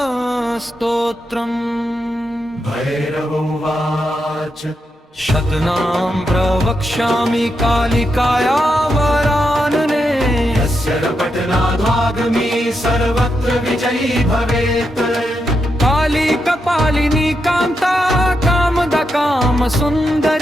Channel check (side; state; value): both; normal; correlation 0.84